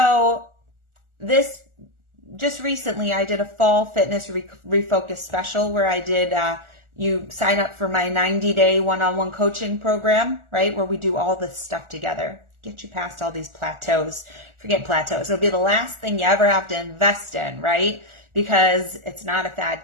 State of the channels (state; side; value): late; left; 1.4 ms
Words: this just recently I did a fall fitness refocus special where I did you sign up for my 90-day one-on-one coaching program, right? Where we do all this stuff together. Get you past all these plateaus. Forget plateaus. It'll be the last thing you ever have to invest in, right? Because it's not a fad